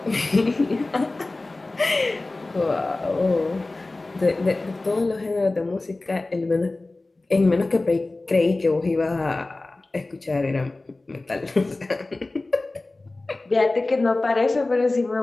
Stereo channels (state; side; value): quieter; right; 3.1 dB